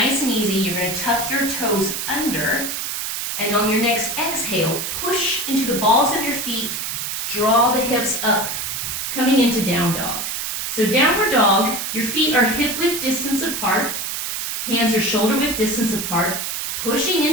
and easy. You're going to tuck your toes under, and on your next exhale, push into the balls of your feet to draw the hips up, coming into down dog. So downward dog, your feet are hip width distance apart, hands are shoulder width distance apart, pushing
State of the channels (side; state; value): right; noise; hiss, 3 dB below the sound